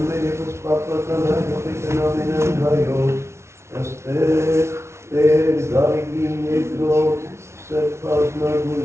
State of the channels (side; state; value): left; late; 0.13 ms